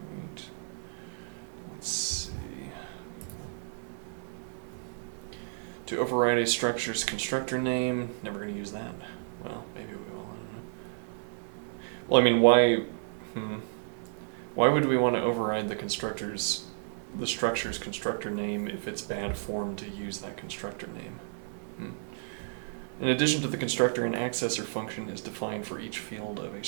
Alright. Let's see. To override a structure's constructor name, never going to use that. Well, maybe we will, I don't know. Well, I mean, why would we want to override the structure's constructor name if it's bad form to use that constructor name? In addition to the constructor, an accessor function is defined for each field of a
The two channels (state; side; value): silent; left; 57 dB below the other